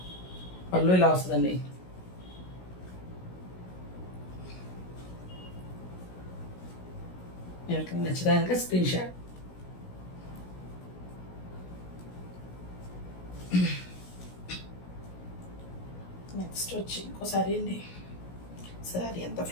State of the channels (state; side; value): late; right; 16 ms